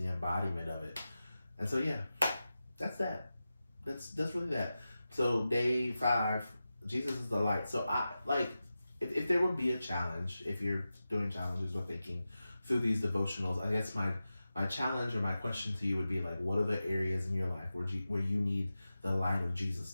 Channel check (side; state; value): both; inverted; correlation -0.93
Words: embodiment of it. And so yeah, that's that. That's really that. So day 5, Jesus is the light. So I like, if there would be a challenge, if you're doing challenges or thinking through these devotionals, I guess my challenge or my question to you would be like, what are the areas in your life where you need the light of Jesus